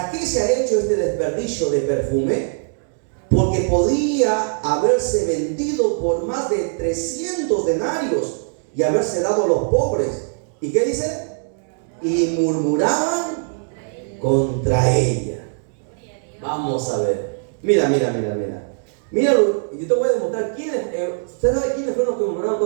qué se ha hecho este desperdicio de perfume? Porque podía haberse vendido por más de 300 denarios y haberse dado a los pobres. ¿Y qué dice? Y murmuraban contra ella. Vamos a ver. Mira. Míralo, y yo te voy a demostrar quiénes. ¿Usted sabe quiénes fueron los que murmuraron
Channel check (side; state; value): left; silent; digital silence